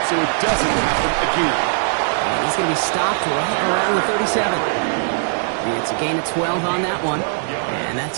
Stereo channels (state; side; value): silent; left; digital silence